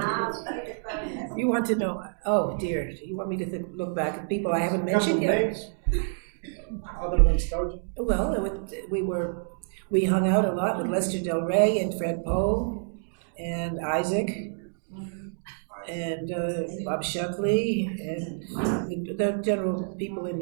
You want to know? Oh dear, you want me to look back at people I haven't mentioned yet? Other than Sturgeon? Well, we hung out a lot with Lester Del Rey and Fred Poe and Isaac and Bob Shuckley and the general people in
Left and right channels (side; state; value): left; silent; digital silence